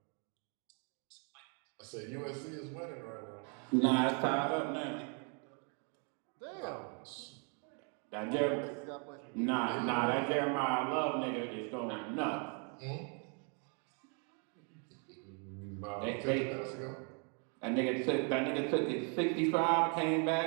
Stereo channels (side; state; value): left; quieter; 38.7 dB